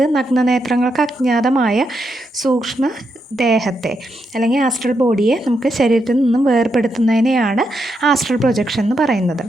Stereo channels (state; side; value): normal; both; correlation 0.82